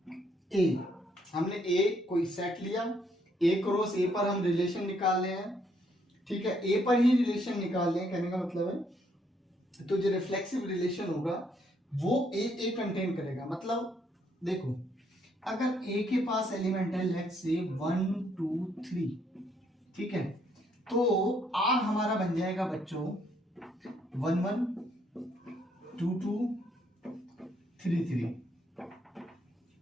A। हमने A कोई सेट लिया, A क्रॉस A पर हम रिलेशन निकाल रहे हैं। ठीक है, A पर ही रिलेशन निकाल रहे हैं, कहने का मतलब है तो जो रिफ्लेक्सिव रिलेशन होगा वो A कंटेन करेगा। मतलब देखो, अगर A के पास एलिमेंट है लेट्स से 1 2 3, ठीक है, तो R हमारा बन जाएगा बच्चों 1 1 2 2 3 3।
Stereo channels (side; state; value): both; normal; correlation 0.71